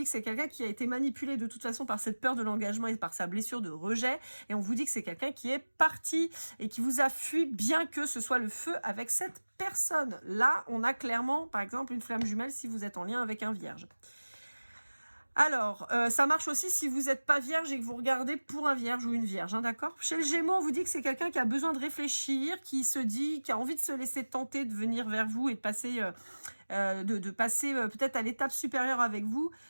que c'est quelqu'un qui a été manipulé de toute façon par cette peur de l'engagement et par sa blessure de rejet, et on vous dit que c'est quelqu'un qui est parti et qui vous a fui, bien que ce soit le feu avec cette personne. Là, on a clairement, par exemple, une flamme jumelle si vous êtes en lien avec un vierge. Alors, ça marche aussi si vous n'êtes pas vierge et que vous regardez pour un vierge ou une vierge, hein, d'accord? Chez le Gémeaux, on vous dit que c'est quelqu'un qui a besoin de réfléchir, qui se dit, qui a envie de se laisser tenter de venir vers vous et de passer, passer peut-être à l'étape supérieure avec vous,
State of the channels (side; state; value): both; inverted; correlation -1.00